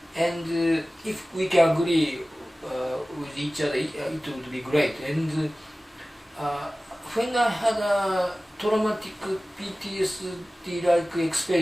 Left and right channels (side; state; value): both; normal; correlation 0.97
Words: And if we can agree with each other, it would be great. And when I had a traumatic PTSD-like